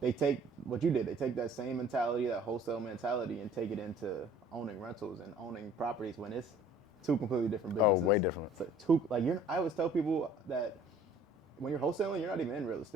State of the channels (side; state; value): both; normal; correlation 0.52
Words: take what you did. They take that same mentality, that wholesale mentality, and take it into owning rentals and owning properties when it's two completely different businesses. Oh, way different. So I always tell people that when you're wholesaling, you're not even in real